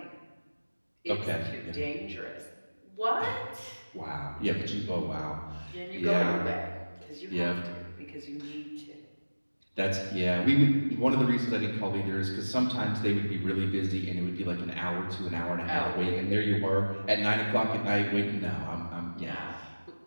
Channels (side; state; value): both; inverted; correlation -1.00